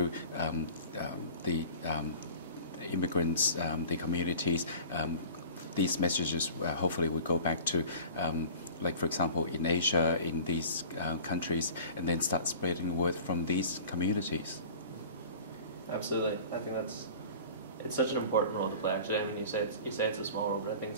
the immigrants, the communities. These messages hopefully would go back to, like for example, in Asia, in these countries, and then start spreading the word from these communities. Absolutely, I think it's such an important role to play. Actually, I mean, you say it's a small role, but I think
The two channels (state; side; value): inverted; both; correlation -0.41